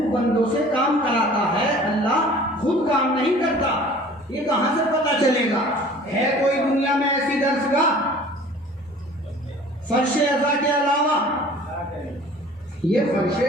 بندوں سے کام کراتا ہے، اللہ خود کام نہیں کرتا۔ یہ کہاں سے پتہ چلے گا؟ ہے کوئی دنیا میں ایسی درسگاہ فرش ازا کے علاوہ؟ یہ فرش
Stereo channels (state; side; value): normal; both; correlation 0.47